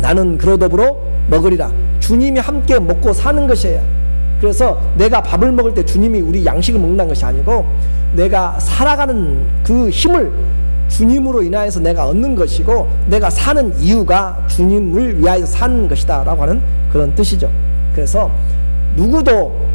나는 그로 더불어 먹으리라. 주님이 함께 먹고 사는 것이에요. 그래서 내가 밥을 먹을 때 주님이 우리 양식을 먹는 것이 아니고 내가 살아가는 그 힘을 주님으로 인하여서 내가 얻는 것이고, 내가 사는 이유가 주님을 위하여 사는 것이다 라고 하는 그런 뜻이죠. 그래서 누구도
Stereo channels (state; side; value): inverted; both; correlation -1.00